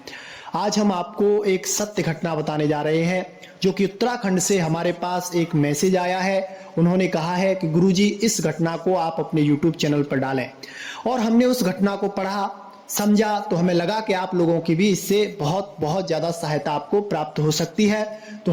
आज हम आपको एक सत्य घटना बताने जा रहे हैं जो कि उत्तराखंड से हमारे पास एक मैसेज आया है। उन्होंने कहा है कि गुरुजी इस घटना को आप अपने YouTube चैनल पर डालें, और हमने उस घटना को पढ़ा समझा तो हमें लगा कि आप लोगों की भी इससे बहुत ज़्यादा सहायता आपको प्राप्त हो सकती है। तो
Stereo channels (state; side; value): identical; both; correlation 1.00